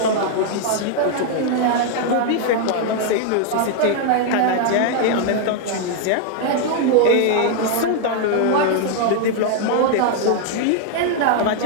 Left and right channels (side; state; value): both; different; correlation 0.00